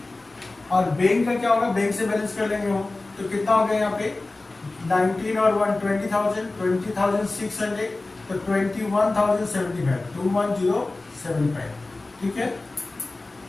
और बैंक का क्या होगा, बैंक से बैलेंस कर लेंगे हम। तो कितना हो गया यहाँ पे 19 और 1 20,000 20,600, तो 21,075 21,075, ठीक है।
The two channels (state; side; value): quieter; right; 3.1 dB